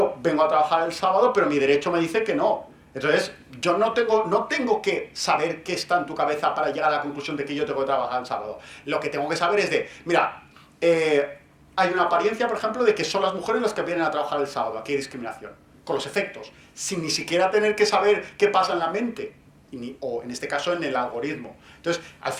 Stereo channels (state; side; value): identical; both; correlation 1.00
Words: vengo a trabajar el sábado, pero mi derecho me dice que no. Entonces, yo no tengo que saber qué está en tu cabeza para llegar a la conclusión de que yo tengo que trabajar el sábado. Lo que tengo que saber es de, mira, hay una apariencia, por ejemplo, de que son las mujeres las que vienen a trabajar el sábado. Aquí hay discriminación. Con los efectos. Sin ni siquiera tener que saber qué pasa en la mente. O en este caso en el algoritmo. Entonces, al